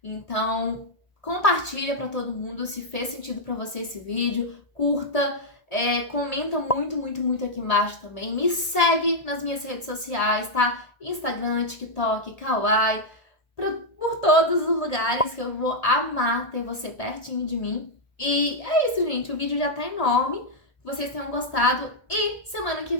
Então, compartilha pra todo mundo se fez sentido pra você esse vídeo, curta, comenta muito, muito, muito aqui embaixo também. Me segue nas minhas redes sociais, tá? Instagram, TikTok, Kawaii, por todos os lugares que eu vou amar ter você pertinho de mim. E é isso, gente. O vídeo já tá enorme. Que vocês tenham gostado. E semana que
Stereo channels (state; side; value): late; right; 1.8 ms